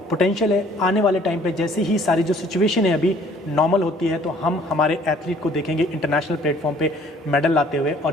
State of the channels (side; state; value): both; normal; correlation 0.57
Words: पोटेंशियल है। आने वाले टाइम पे जैसे ही सारी जो सिचुएशन है अभी नॉर्मल होती है तो हम हमारे एथलीट को देखेंगे इंटरनेशनल प्लेटफॉर्म पे मेडल लाते हुए।